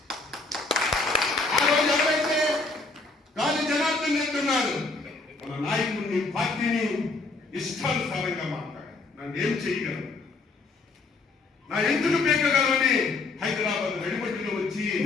ఆ రోజు ఎవరైతే అబద్ధం చెప్తున్నారు. మన నాయకుడిని పార్టీని ఇష్టానుసారంగా మాట్లాడారు. నన్ను ఏం చేయగలను, నా ఎందుకు పీకగలమని హైదరాబాద్ వెడిపట్టిలో వచ్చి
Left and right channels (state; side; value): quieter; right; 3.6 dB